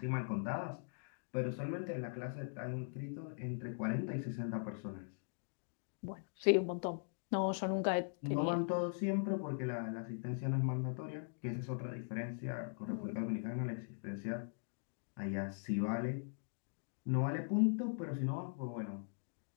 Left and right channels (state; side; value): silent; right; digital silence